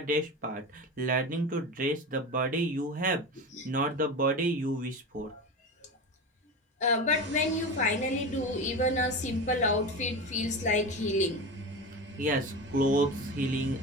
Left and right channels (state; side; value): normal; both; correlation 0.25